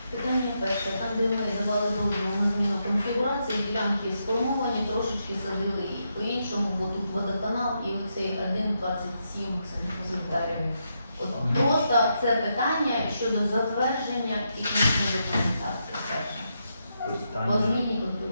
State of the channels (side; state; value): both; inverted; correlation -0.82